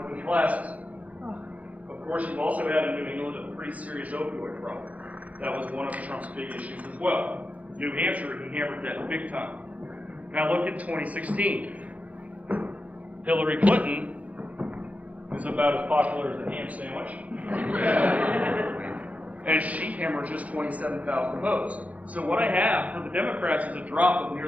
classes. Of course, you've also had in New England a pretty serious opioid problem. That was one of Trump's big issues as well. New Hampshire, he hammered that big time. Now look at 2016. Hillary Clinton is about as popular as a ham sandwich. And she hammered just 27,000 votes. So what I have for the Democrats is a drop of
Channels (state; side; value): late; left; 0.070 ms